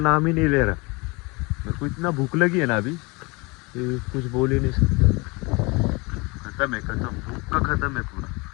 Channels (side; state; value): right; quieter; 26.7 dB